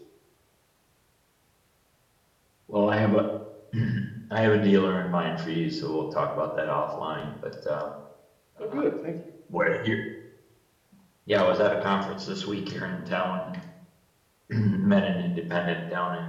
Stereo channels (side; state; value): both; identical; correlation 1.00